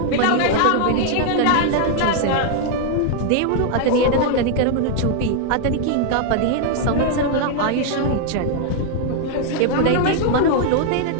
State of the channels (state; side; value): different; both; correlation 0.00